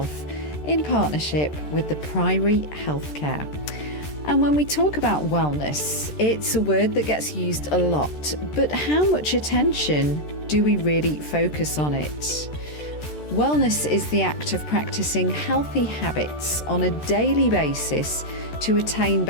in partnership with the Priory Healthcare. And when we talk about wellness, it's a word that gets used a lot, but how much attention do we really focus on it? Wellness is the act of practicing healthy habits on a daily basis to attain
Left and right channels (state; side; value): late; right; 13 ms